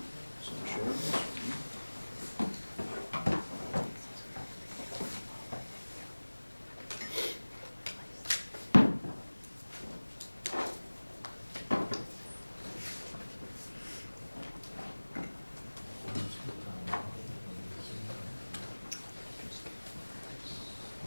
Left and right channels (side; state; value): both; inverted; correlation -1.00